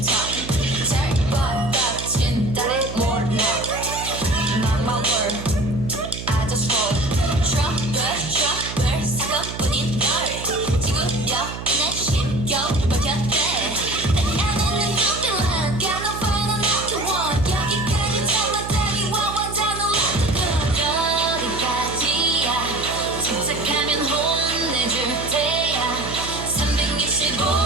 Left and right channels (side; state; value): right; noise; hum, 9 dB below the sound